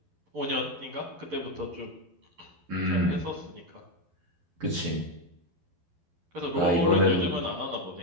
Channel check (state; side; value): late; left; 12 ms